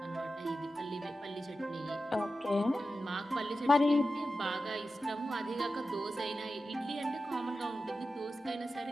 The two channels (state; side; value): normal; both; correlation 0.92